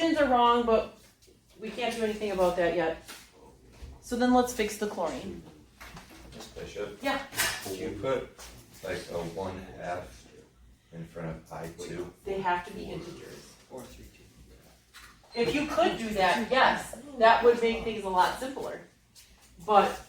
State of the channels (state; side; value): identical; both; correlation 1.00